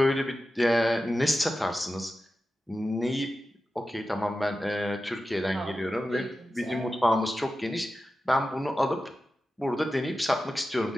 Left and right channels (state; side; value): normal; both; correlation 0.93